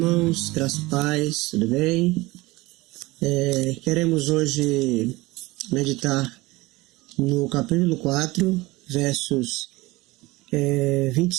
graça e paz, tudo bem? Queremos hoje meditar no capítulo 4, versos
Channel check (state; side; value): quieter; left; 21.1 dB